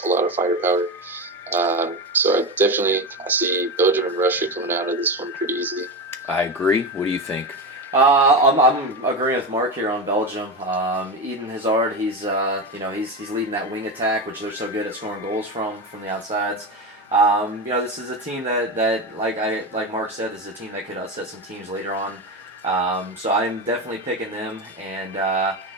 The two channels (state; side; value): normal; both; correlation 0.18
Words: a lot of firepower. So I see Belgium and Russia coming out of this one pretty easily. I agree. What do you think? I'm agreeing with Mark here on Belgium. Eden Hazard, he's leading that wing attack, which they're so good at scoring goals from the outsides. This is a team that like Mark said, this is a team that could upset some teams later on. So I'm definitely picking them, and